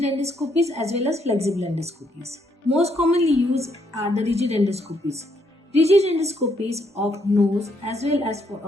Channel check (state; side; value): normal; both; correlation 0.73